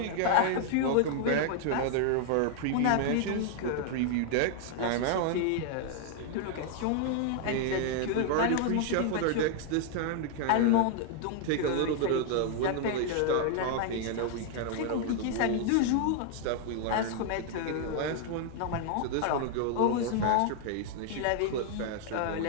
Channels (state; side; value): different; both; correlation 0.00